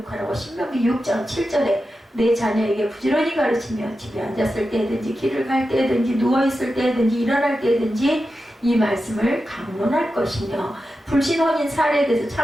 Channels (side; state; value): both; normal; correlation 0.91